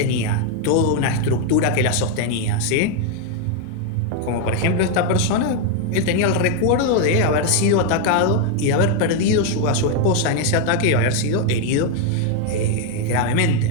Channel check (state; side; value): different; both; correlation 0.01